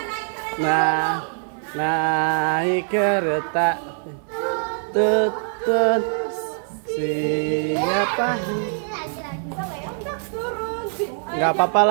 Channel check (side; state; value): left; silent; 59 dB below the other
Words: Nah, naik kereta tutut siapa? Nggak apa-apa